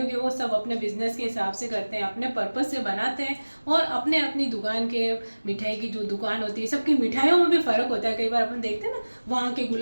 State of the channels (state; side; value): inverted; both; correlation -1.00